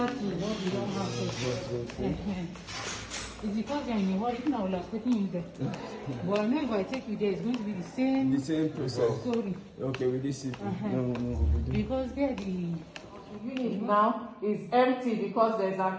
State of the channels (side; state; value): both; identical; correlation 1.00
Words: to what we don't have here. It's because you're in a hurry. Now I would have taken you there. But I know if I take you there, it's going to be the same process. Story. Okay, with this no. Because there the unit now is empty because there's